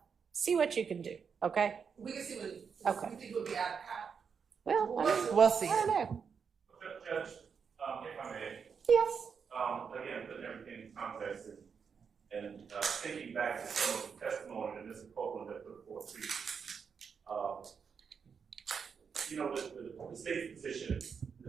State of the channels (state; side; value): quieter; left; 6.3 dB